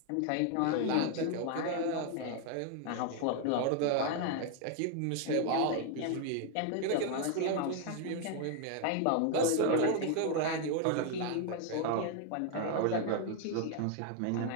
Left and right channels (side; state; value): both; different; correlation 0.01